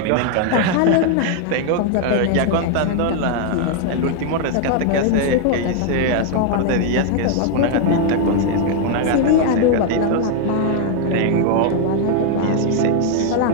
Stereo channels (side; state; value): both; different; correlation 0.00